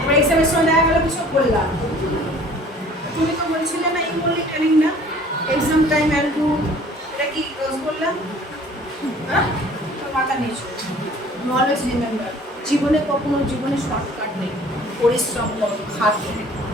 এবার এক্সামের সময় দেখা গেলো কিছু বললাম, তুমি তো বলছিলে না, এই বললি ট্রেনিং না, এক্সাম টাইম একটু, এটা কি রোজ বললাম, হ্যাঁ, তোর মাথা নিয়েছো। অলওয়েজ রিমেম্বার, জীবনে শর্টকাট নেই, পরিশ্রম করো, খাটো,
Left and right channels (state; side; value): normal; both; correlation 0.51